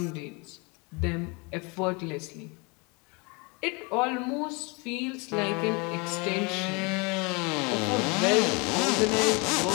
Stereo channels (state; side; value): quieter; right; 29.5 dB